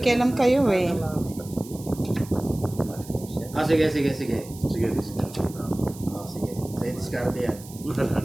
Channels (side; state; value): right; noise; hiss, 18 dB below the sound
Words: kayo eh. Ah, sige. Sige. Ah, sige. Sa diskarte yan.